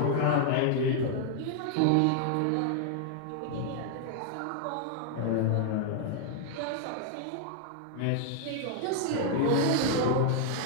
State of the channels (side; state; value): both; different; correlation 0.00